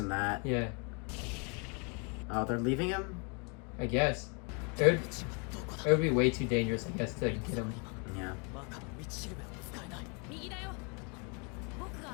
that. Yeah. Oh, they're leaving him? I guess. It would be way too dangerous, I guess, to get him. Yeah.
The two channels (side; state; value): right; quieter; 34.8 dB